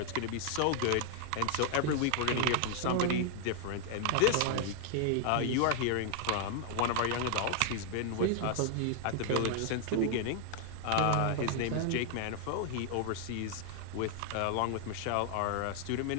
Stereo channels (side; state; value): both; different; correlation 0.00